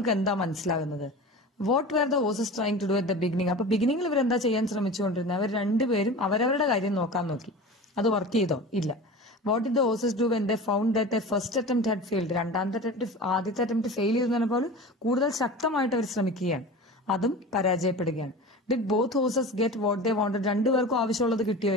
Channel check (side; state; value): both; normal; correlation 0.34